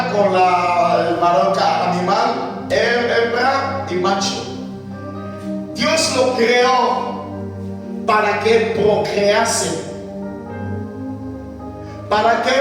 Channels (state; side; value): identical; both; correlation 1.00